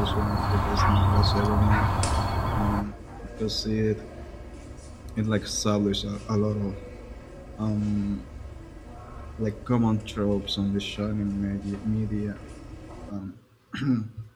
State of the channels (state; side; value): identical; both; correlation 1.00